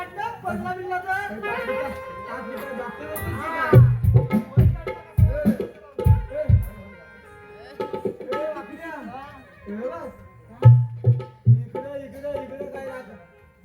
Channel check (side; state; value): both; identical; correlation 1.00